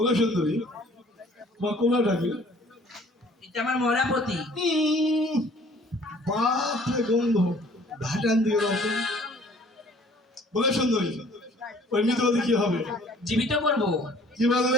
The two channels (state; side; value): normal; both; correlation 0.54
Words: সুন্দরী, তোমার কোনটা কি? এটা আমার মরাপতি। বাপরে গন্ধ, ঘাটান দিয়ে দাও তো। বলে সুন্দরী, ওই মৃতবাদী কি হবে? জীবিত করবো। কি